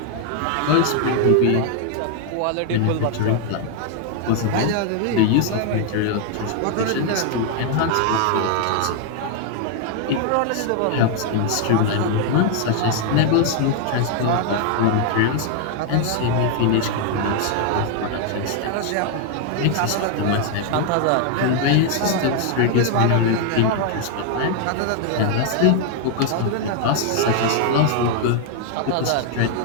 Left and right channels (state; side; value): different; both; correlation 0.00